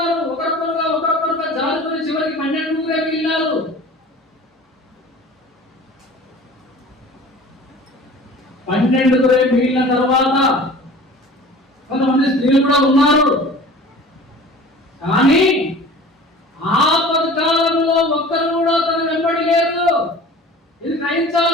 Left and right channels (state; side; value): normal; both; correlation 0.42